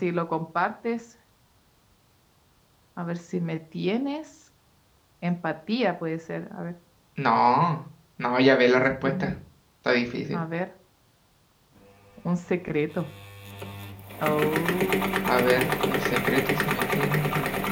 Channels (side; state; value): both; identical; correlation 1.00